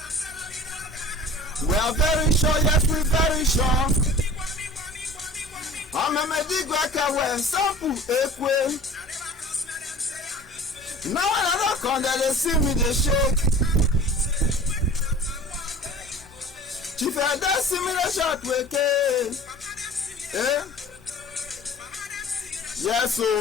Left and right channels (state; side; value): normal; both; correlation 0.42